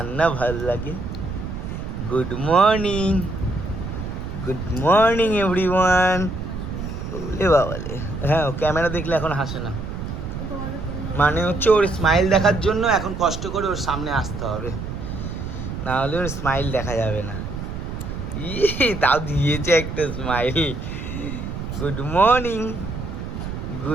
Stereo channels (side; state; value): right; noise; rumble, 6 dB below the sound